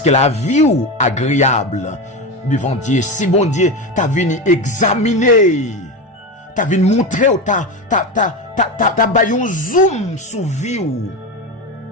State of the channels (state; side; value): normal; both; correlation 0.19